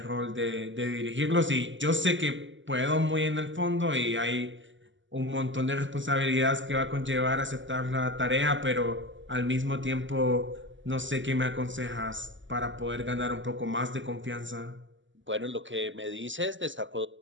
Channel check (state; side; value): late; left; 0.55 ms